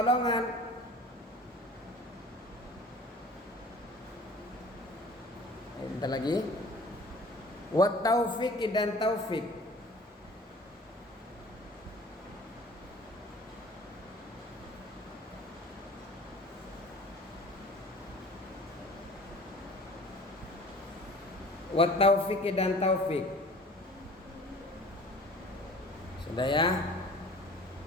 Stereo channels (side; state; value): both; normal; correlation 0.46